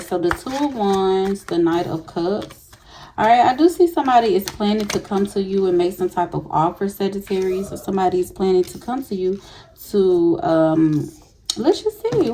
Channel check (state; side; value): identical; both; correlation 1.00